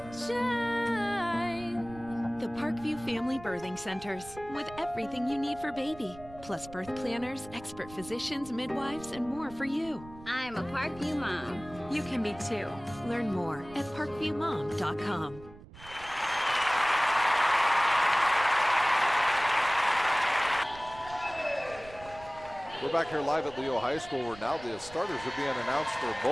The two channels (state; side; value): noise; right; rumble, 18 dB below the sound